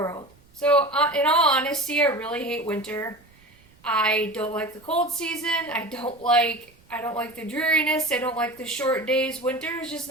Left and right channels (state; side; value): noise; right; rumble, 29 dB below the sound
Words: So in all honesty, I really hate winter. I don't like the cold season. I don't like the dreariness. I don't like the short days. Winter is just